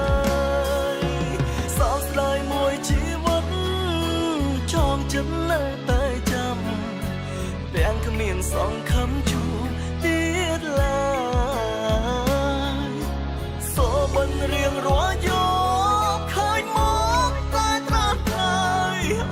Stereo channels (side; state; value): both; identical; correlation 1.00